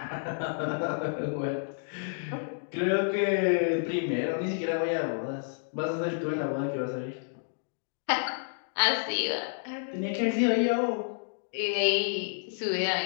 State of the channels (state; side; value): silent; right; digital silence